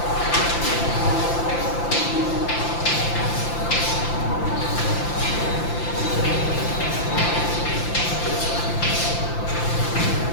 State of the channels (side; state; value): right; late; 5.8 ms